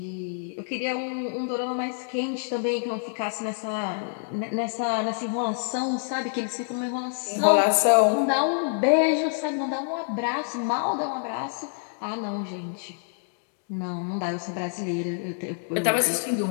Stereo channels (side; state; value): right; silent; digital silence